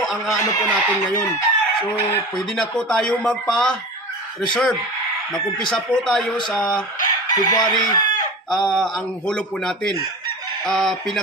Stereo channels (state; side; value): normal; both; correlation 0.32